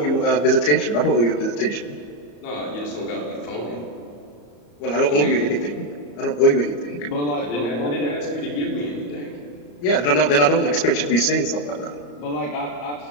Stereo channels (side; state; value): right; late; 34 ms